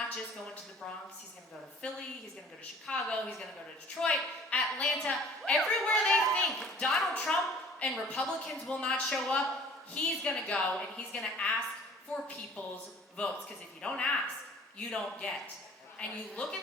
just going to the Bronx, he's gonna go to Philly, he's gonna go to Chicago, he's gonna go to Detroit, Atlanta, everywhere they think Donald Trump and Republicans will not show up, he's gonna go and he's gonna ask for people's votes. Because if you don't ask, you don't get. And you look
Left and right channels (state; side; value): normal; both; correlation 0.51